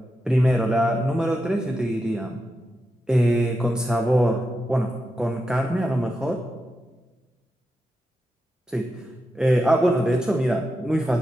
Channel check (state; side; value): normal; both; correlation 0.88